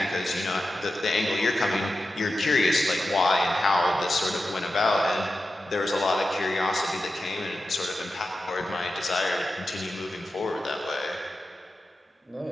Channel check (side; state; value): both; normal; correlation 0.92